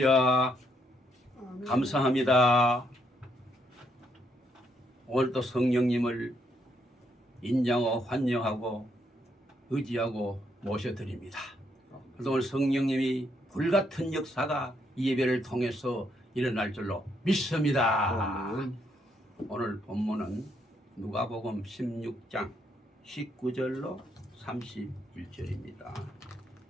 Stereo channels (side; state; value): both; normal; correlation 0.75